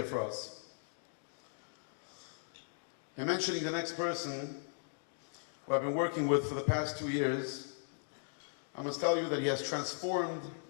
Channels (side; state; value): right; silent; digital silence